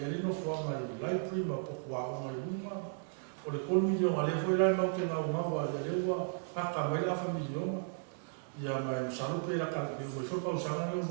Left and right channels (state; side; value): silent; left; digital silence